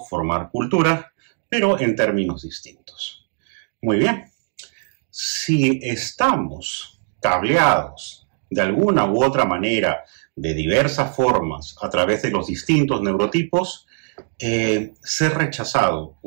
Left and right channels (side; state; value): left; silent; 65 dB below the other